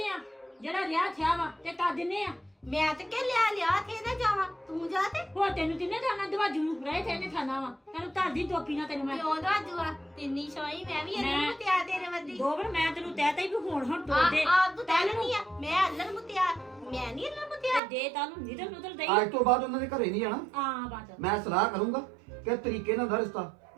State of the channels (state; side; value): drops out; left; at 17.8 s